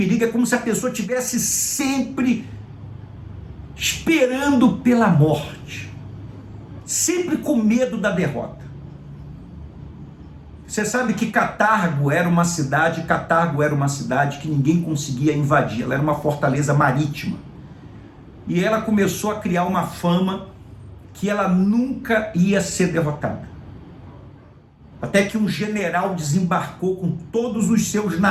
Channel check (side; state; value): both; identical; correlation 1.00